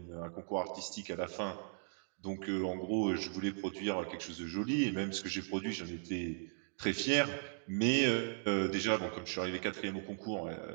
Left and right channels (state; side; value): silent; left; digital silence